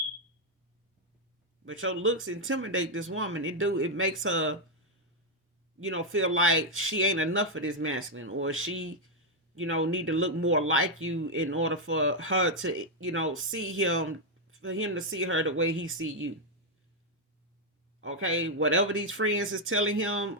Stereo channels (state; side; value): normal; both; correlation 0.00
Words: But your looks intimidate this woman. It makes her, feel like she ain't enough for this masculine, or she, need to look more like you in order for her to, see him, for him to see her the way he see you. Okay, whatever these friends is telling her